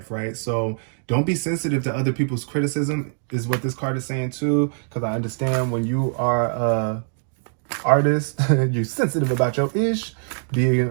right? So don't be sensitive to other people's criticism is what this card is saying too, because I understand when you are a artist, you're sensitive about your ish, being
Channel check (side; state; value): left; silent; digital silence